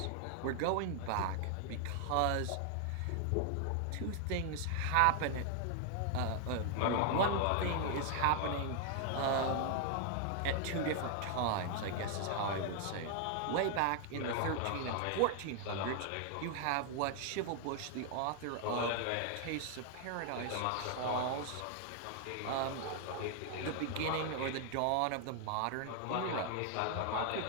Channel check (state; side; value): different; both; correlation 0.00